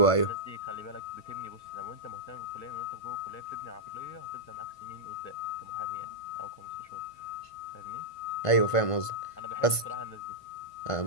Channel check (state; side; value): late; right; 1.5 ms